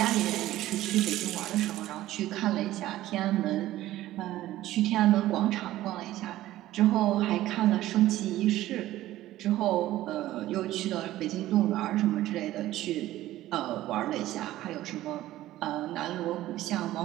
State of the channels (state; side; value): quieter; left; 15.0 dB